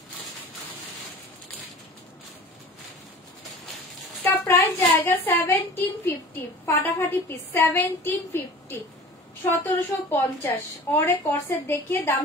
इसका प्राइस जाएगा 1750। फाटाफाटी पीस 1750, 1750। और एक कॉर्सेट देखिए, दाम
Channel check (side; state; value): both; normal; correlation 0.41